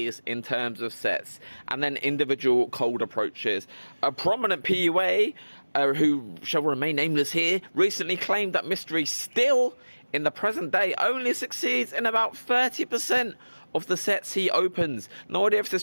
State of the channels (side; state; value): both; inverted; correlation -1.00